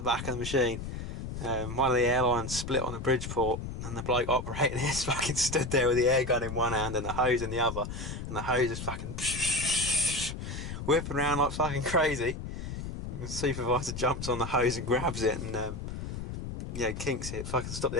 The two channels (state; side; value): noise; left; rumble, 7 dB below the sound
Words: back of the machine. One of the airlines split on the Bridgeport and the bloke operating it fucking stood there with the air gun in one hand and the hose in the other, and the hose is fucking whipping around like fucking crazy. And the supervisor jumps on the hose and grabs it and yeah, kinks it, fucking stop the